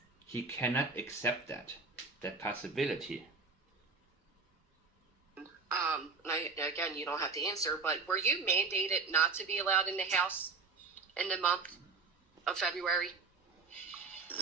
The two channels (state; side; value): quieter; left; 4.5 dB